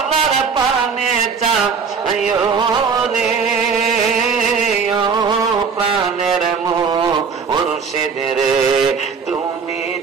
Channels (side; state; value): left; quieter; 5.7 dB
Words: পানে চা রে প্রাণের মুর্শিদ রে তুমি